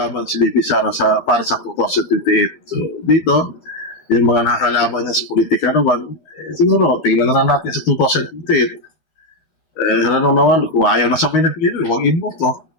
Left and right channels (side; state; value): right; late; 12 ms